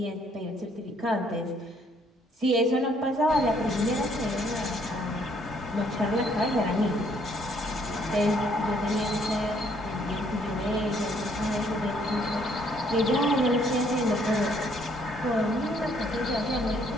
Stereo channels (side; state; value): both; normal; correlation 0.66